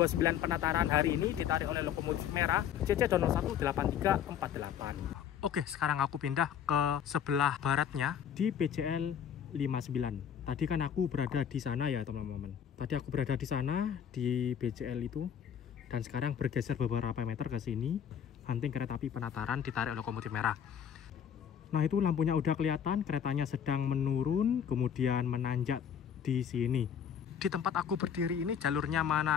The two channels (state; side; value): quieter; right; 8.6 dB